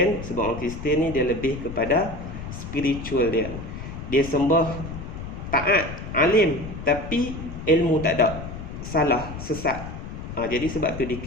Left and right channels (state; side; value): noise; left; rumble, 9 dB below the sound